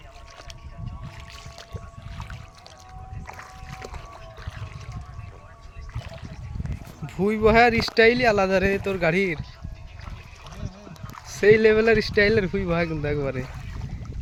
ভুই বহার স্টাইলই আলাদা রে তোর গাড়ির, সেই লেভেলের স্টাইলের ভুই বহা কিন্তু একবারে।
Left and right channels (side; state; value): both; identical; correlation 1.00